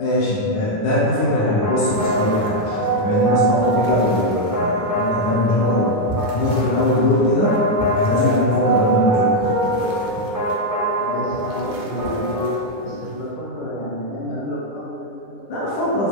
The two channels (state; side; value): late; right; 10 ms